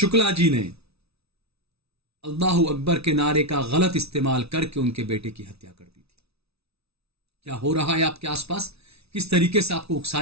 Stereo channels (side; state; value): left; late; 0.78 ms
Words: जी ने अल्लाह अकबर के नारे का गलत इस्तेमाल करके उनके बेटे की हत्या कर दी थी। क्या हो रहा है आपके आसपास, किस तरीके से आपको